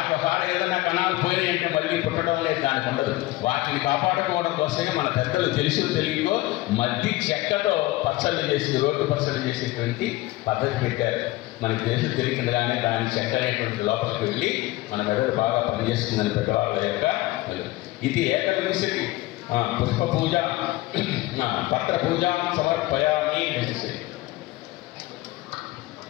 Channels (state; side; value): quieter; right; 18.8 dB